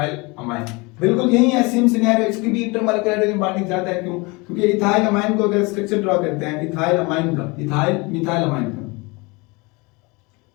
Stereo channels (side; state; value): right; quieter; 26.5 dB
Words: amine. बिल्कुल यही है, सेम सिनेरियो, इसकी भी इंटरमॉलिक्यूलर हाइड्रोजन बॉन्डिंग ज्यादा है। क्यों, क्योंकि इथाइल अमाइन को अगर स्ट्रक्चर ड्रॉ करते हैं इथाइल अमाइन का, इथाइल मिथाइल अमाइन का,